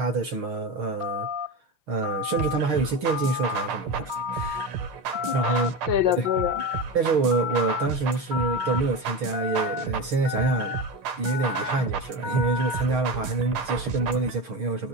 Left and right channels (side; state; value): left; late; 6.4 ms